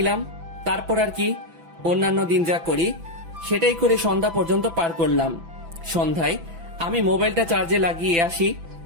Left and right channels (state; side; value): late; left; 6.0 ms